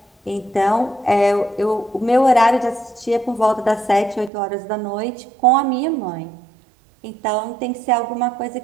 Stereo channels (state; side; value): drops out; left; at 4.3 s